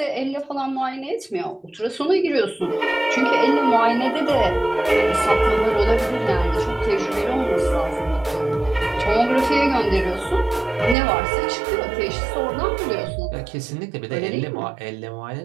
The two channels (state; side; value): drops out; left; at 11.0 s